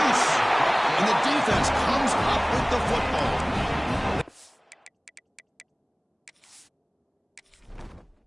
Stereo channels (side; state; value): both; identical; correlation 1.00